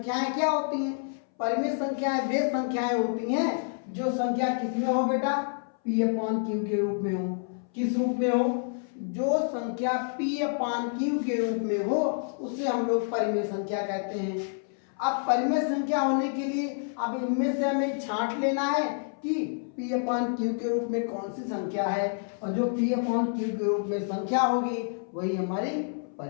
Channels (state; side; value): silent; right; 59 dB below the other